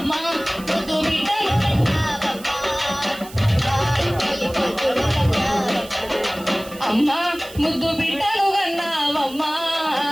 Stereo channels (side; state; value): right; noise; hiss, 18 dB below the sound